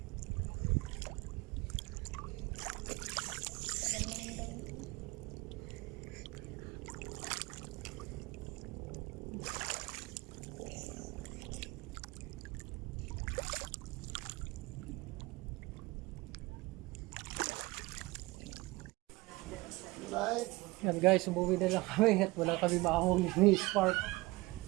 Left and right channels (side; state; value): left; quieter; 22.2 dB